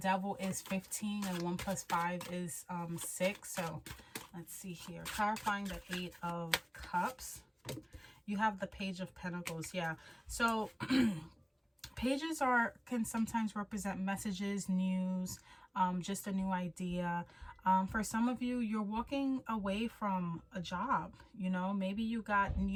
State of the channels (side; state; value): both; identical; correlation 1.00